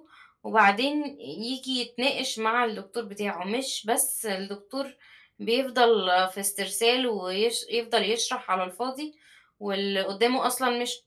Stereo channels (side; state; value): both; identical; correlation 1.00